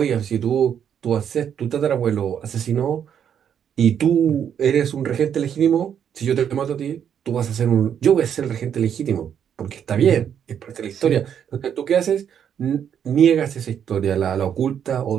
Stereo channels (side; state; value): left; quieter; 8.6 dB